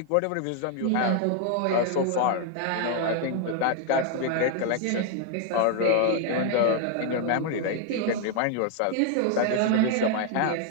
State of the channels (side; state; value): both; different; correlation 0.01